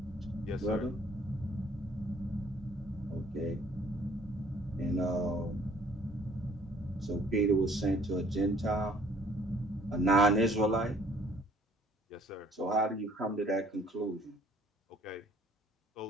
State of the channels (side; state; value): both; normal; correlation 0.58